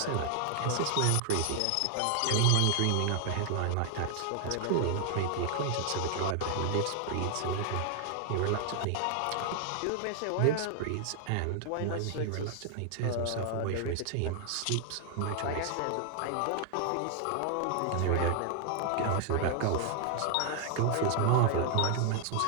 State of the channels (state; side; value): different; both; correlation 0.00